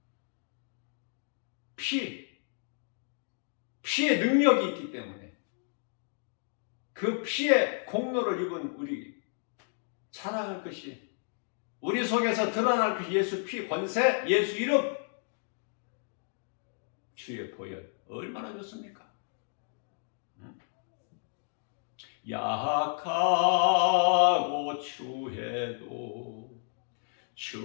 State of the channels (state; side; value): silent; right; 57 dB below the other